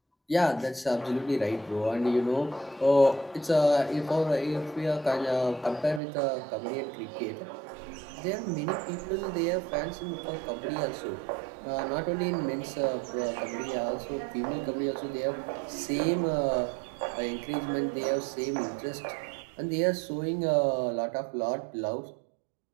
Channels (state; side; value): drops out; left; at 6.0 s